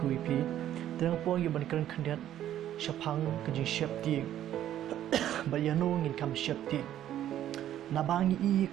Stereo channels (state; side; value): quieter; left; 11.7 dB